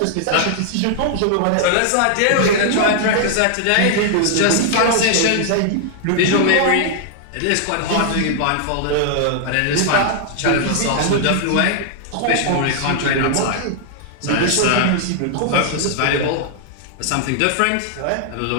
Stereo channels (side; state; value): both; different; correlation -0.01